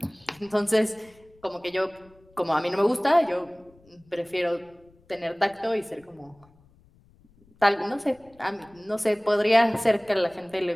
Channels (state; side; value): noise; left; rumble, 30 dB below the sound